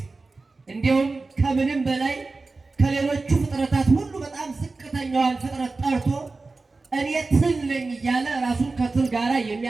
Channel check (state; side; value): quieter; left; 3.7 dB